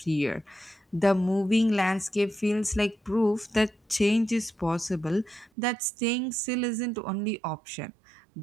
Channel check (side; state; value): left; drops out; at 5.5 s